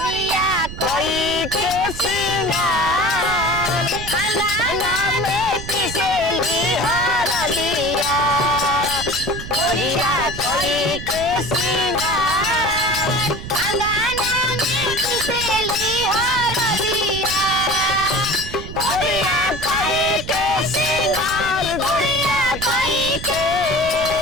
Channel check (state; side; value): noise; right; rumble, 10 dB below the sound